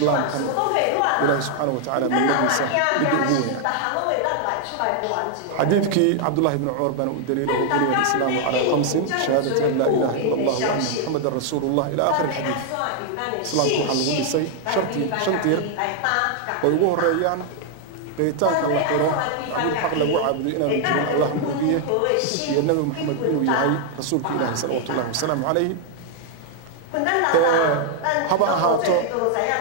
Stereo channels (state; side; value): different; both; correlation 0.00